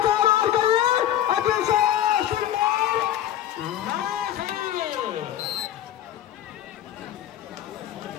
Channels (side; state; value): right; quieter; 11.8 dB